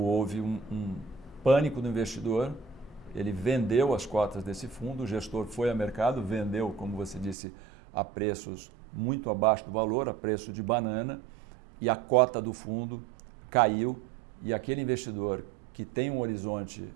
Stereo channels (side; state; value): left; drops out; at 7.4 s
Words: um pânico do investidor, ele vendeu as cotas desse fundo, o gestor foi ao mercado, vendeu, como você disse, a preços muito abaixo do valor, a preço de banana, e a cota do fundo caiu, e aquele investidor que tem um horizonte